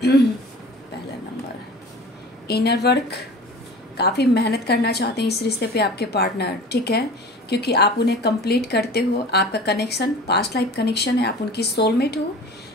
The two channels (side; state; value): both; normal; correlation 0.40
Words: पहला नंबर, इनर वर्क, काफ़ी मेहनत करना चाहते हैं इस रिश्ते पे आपके पार्टनर, ठीक है, क्योंकि आप उन्हें कंप्लीट करते हो, आपका कनेक्शन पास्ट लाइफ कनेक्शन है, आप उनकी सोलमेट हो,